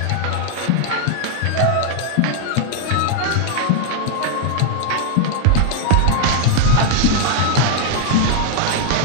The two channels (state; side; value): different; both; correlation 0.00